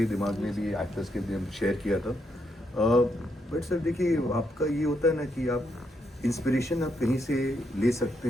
दिमाग में भी, एक्टर्स के भी शेयर किया था। बट सर देखिए आपका ये होता है ना कि आप इंस्पिरेशन आप कहीं से ले सकते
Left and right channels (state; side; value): normal; both; correlation 0.79